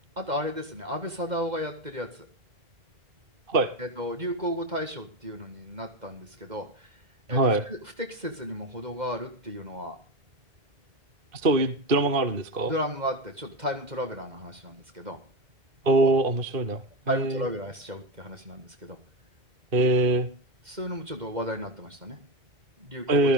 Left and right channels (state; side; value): late; left; 2.1 ms